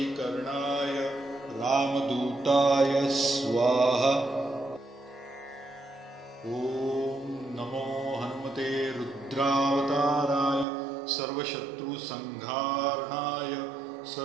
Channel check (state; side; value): drops out; left; at 10.7 s